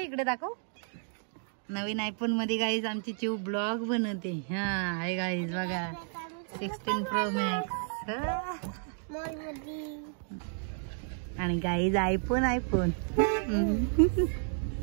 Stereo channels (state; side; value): silent; left; 57 dB below the other